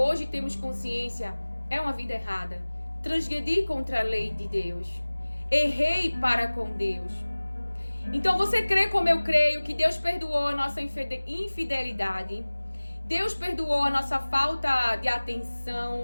temos consciência é uma vida errada. Transgredi contra a lei de Deus. Errei para com Deus. Então você crê como eu creio que Deus perdoou a nossa infidelidade. Deus perdoou a nossa falta de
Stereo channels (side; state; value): both; inverted; correlation -1.00